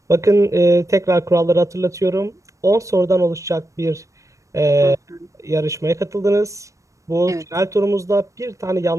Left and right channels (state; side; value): late; left; 0.15 ms